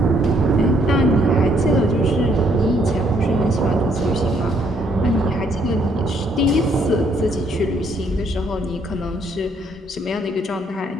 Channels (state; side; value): normal; both; correlation 0.69